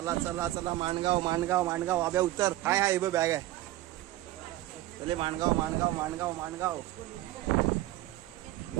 चला चला माणगाव माणगाव माणगाव. आब्या उतर. हाय हाय बॅग आहे. पहिले माणगाव माणगाव माणगाव माणगाव.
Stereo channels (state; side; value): quieter; left; 15.9 dB